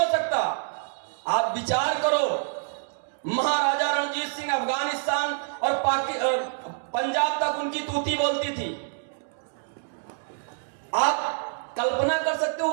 सकता। आप विचार करो, महाराजा रणजीत सिंह अफगानिस्तान और पंजाब तक उनकी तूती बोलती थी। आप कल्पना कर सकते हो,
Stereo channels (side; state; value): left; silent; digital silence